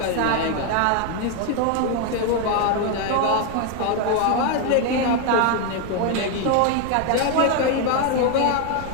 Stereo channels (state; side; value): different; both; correlation 0.01